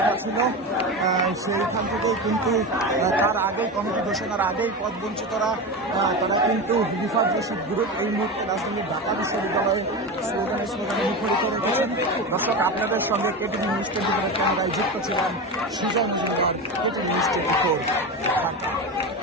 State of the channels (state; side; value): normal; both; correlation 0.22